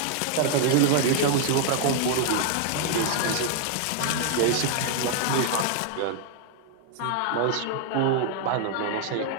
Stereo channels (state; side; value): different; both; correlation 0.00